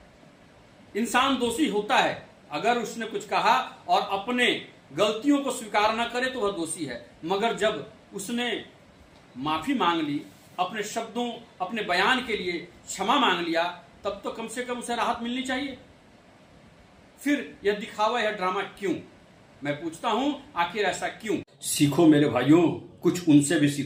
इंसान दोषी होता है, अगर उसने कुछ कहा और अपने गलतियों को स्वीकार न करे तो वह दोषी है। मगर जब उसने माफी मांग ली, अपने शब्दों, अपने बयान के लिए क्षमा मांग लिया, तब तो कम से कम उसे राहत मिलनी चाहिए। फिर यह दिखावा, यह ड्रामा क्यों? मैं पूछता हूं, आखिर ऐसा क्यों? सीखो मेरे भाइयों, कुछ उनसे भी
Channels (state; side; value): identical; both; correlation 1.00